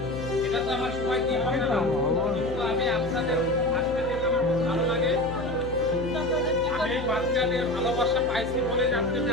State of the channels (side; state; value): left; noise; hum, 10 dB below the sound